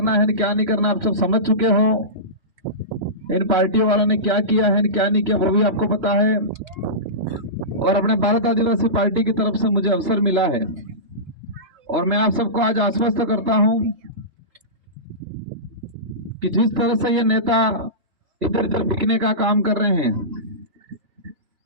है क्या नहीं करना आप सब समझ चुके हो। इन पार्टियों वालों ने क्या किया है क्या नहीं किया वो भी आपको पता है और अपने भारत आदिवासी पार्टी की तरफ से मुझे अवसर मिला है और मैं आप सबको आज आश्वस्त करता हूं कि जिस तरह से ये नेता इधर उधर बिकने का काम कर रहे हैं,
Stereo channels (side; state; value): left; late; 3.3 ms